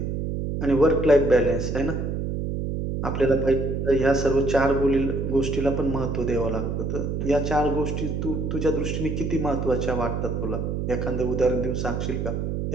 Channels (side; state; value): right; noise; hum, 2 dB below the sound